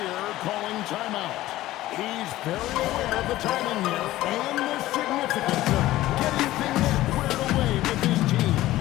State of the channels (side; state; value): right; quieter; 15.9 dB